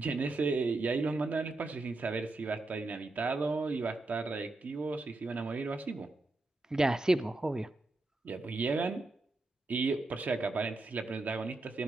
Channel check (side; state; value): left; quieter; 3.0 dB